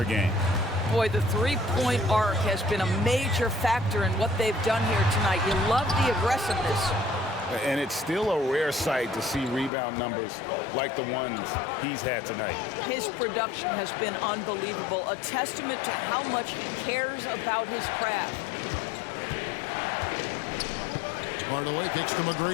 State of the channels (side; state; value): right; drops out; at 9.7 s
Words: game. Boy, the three-point arc has been a major factor in what they've done here tonight. You love the aggressiveness. And it's still a rare sight to see rebound numbers like the ones he's had tonight. His production has been unbelievable, a testament to how much he cares about his craft. Hardaway kicks to